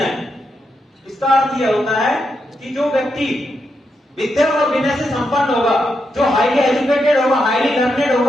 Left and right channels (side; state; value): both; normal; correlation 0.83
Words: इसका अर्थ यह होता है कि जो व्यक्ति विद्या और विनय से संपन्न होगा, जो हाईली एजुकेटेड होगा, हाईली लर्नेड